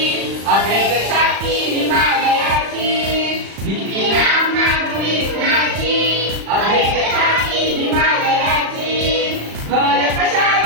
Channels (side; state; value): left; late; 36 ms